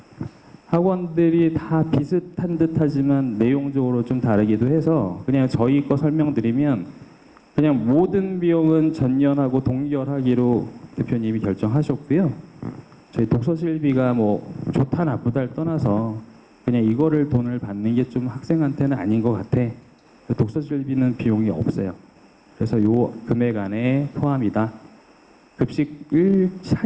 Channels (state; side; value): identical; both; correlation 1.00